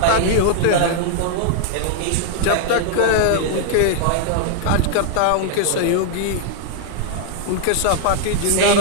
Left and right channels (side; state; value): both; different; correlation -0.01